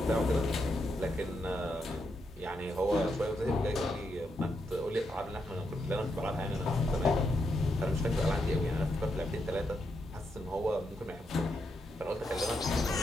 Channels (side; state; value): both; normal; correlation 0.82